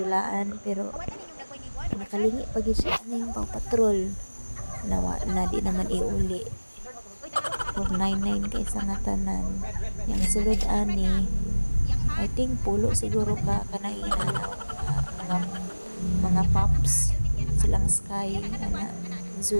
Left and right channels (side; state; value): both; inverted; correlation -1.00